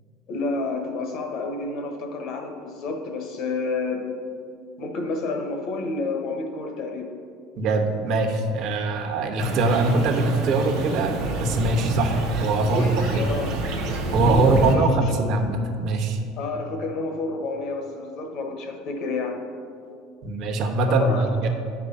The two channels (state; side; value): normal; both; correlation 0.46